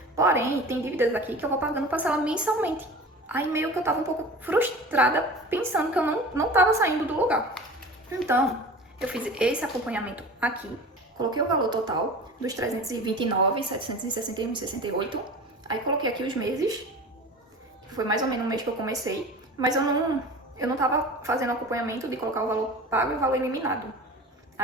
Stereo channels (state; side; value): normal; both; correlation 0.36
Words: Porém, tem dívidas aqui que eu vou pagando parcela mensalmente. Aí meio que eu tava um pouco frustrada, pensando que eu não tava saindo do lugar. Então, eu fiz esse acompanhamento aqui, coloquei o valor total dos 329, 761, 68. Aí coloquei aqui os meses, que foi mais ou menos o mês que eu comecei, mas eu não tava fazendo acompanhamento de colocar o valor pago e o valor eliminado.